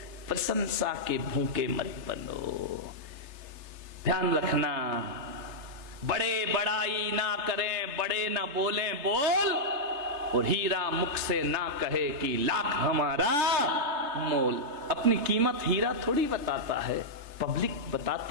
प्रशंसा के भूखे मत बनो। ध्यान रखना, बड़े बड़ाई ना करें, बड़े ना बोलें बोल, और हीरा मुख से ना कहे कि लाख हमारा मोल। अपनी कीमत हीरा थोड़ी बताता है, पब्लिक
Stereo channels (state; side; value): late; left; 3.3 ms